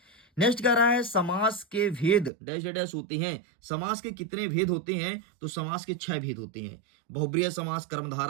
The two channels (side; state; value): left; drops out; at 2.3 s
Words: नेक्स्ट कह रहा है समास के भेद डैश डैश होते हैं। समास के कितने भेद होते हैं? तो समास के 6 भेद होते हैं। बहुब्रीहि समास,